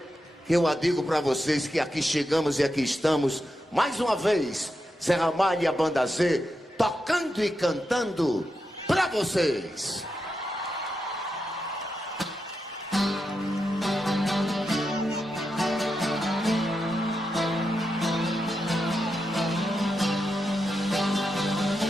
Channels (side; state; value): both; normal; correlation 0.87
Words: que eu digo para vocês que aqui chegamos e aqui estamos, mais uma vez, Zé Ramalho e a Banda Z, tocando e cantando para vocês.